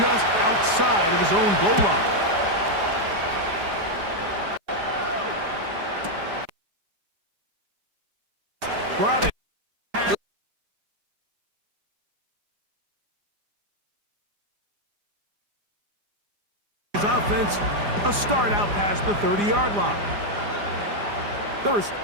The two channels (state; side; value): late; left; 4.9 ms